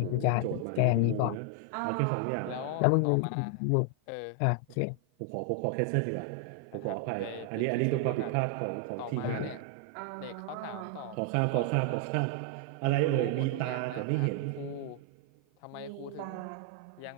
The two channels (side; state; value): both; different; correlation 0.00